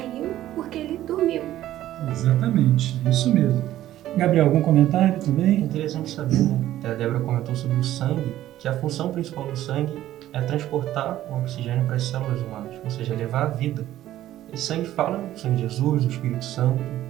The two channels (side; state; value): left; quieter; 13.5 dB